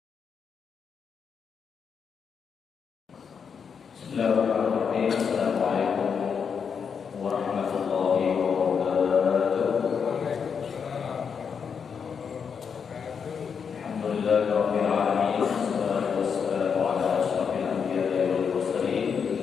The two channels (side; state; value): right; quieter; 6.5 dB